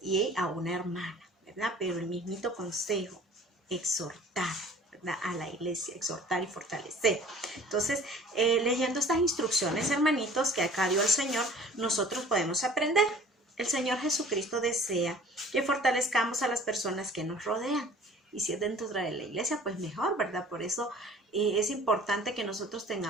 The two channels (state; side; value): normal; both; correlation 0.49